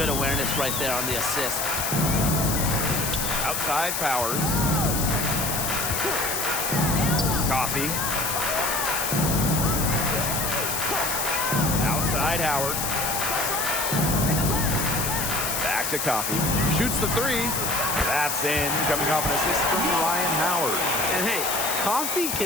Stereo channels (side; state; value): left; noise; hiss, 1 dB below the sound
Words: awareness right there on the assist. Outside Powers. Coffee. Outside Howard. Back to Coffee. Shoots the 3. That's in. Coming off an assist from Ryan Howard. And hey, Coffee